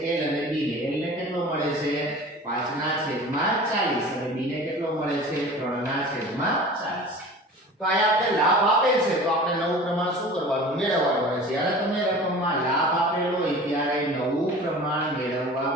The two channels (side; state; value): both; normal; correlation 0.40